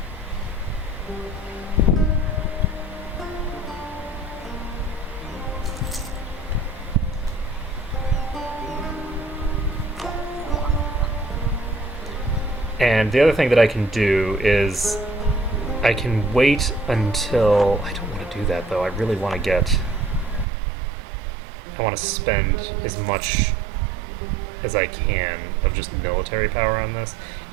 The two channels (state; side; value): drops out; left; at 20.5 s